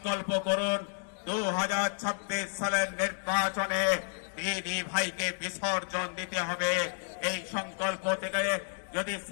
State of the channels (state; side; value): silent; right; 57 dB below the other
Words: করুন 2026 সালের নির্বাচনে দিদি ভাইকে বিসর্জন দিতে হবে। এই সংকল্প থেকে যদি